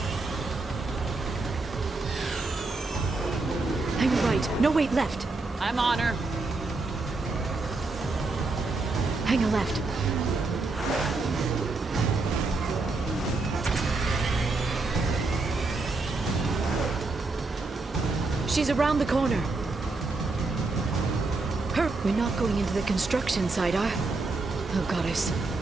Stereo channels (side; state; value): left; quieter; 3.5 dB